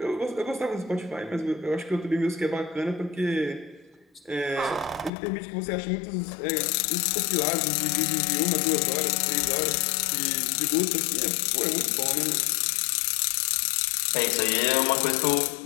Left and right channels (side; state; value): right; drops out; at 5.1 s